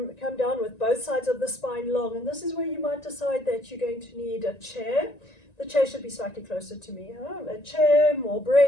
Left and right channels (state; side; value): late; right; 1.9 ms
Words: down with both sides of the spine long. And this is where you might decide that you're going to need a chair. The chair should be slightly closer to me. A chair, more